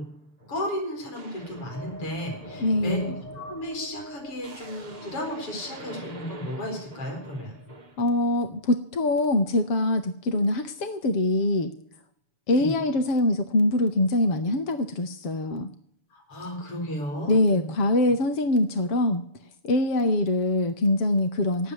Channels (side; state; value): right; late; 7.0 ms